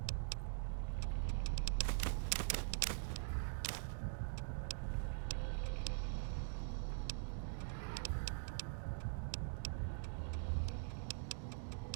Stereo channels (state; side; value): silent; left; digital silence